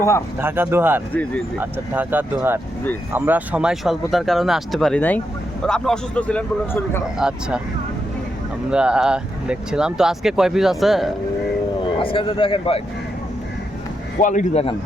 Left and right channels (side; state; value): both; normal; correlation 0.83